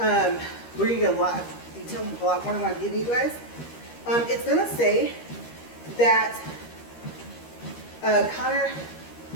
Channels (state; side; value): late; right; 13 ms